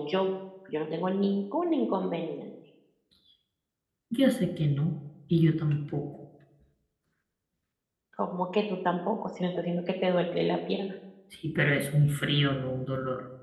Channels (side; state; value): both; identical; correlation 1.00